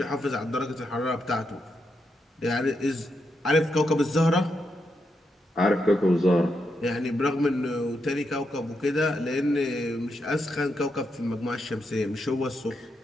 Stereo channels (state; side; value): normal; both; correlation 0.83